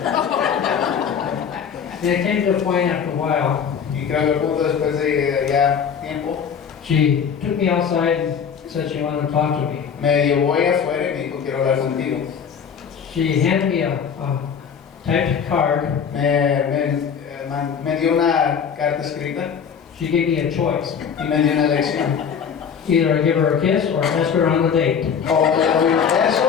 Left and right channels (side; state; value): right; quieter; 7.2 dB